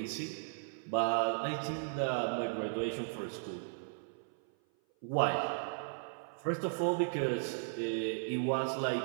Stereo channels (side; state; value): left; silent; 54 dB below the other